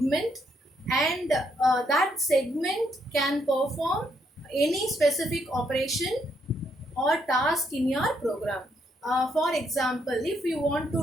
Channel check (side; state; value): both; normal; correlation 0.75